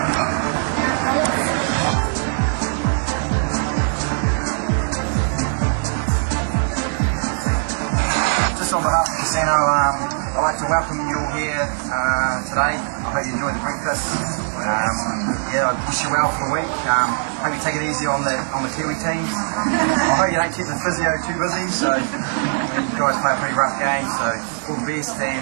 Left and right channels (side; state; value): left; silent; digital silence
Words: Just on behalf of the casino, I'd like to welcome you all here today. I hope you enjoyed the breakfast. I wish you well for the week. Hope you take it easy on the Kiwi teams. I hope you don't keep the physio too busy. So you guys play a pretty rough game. So all the best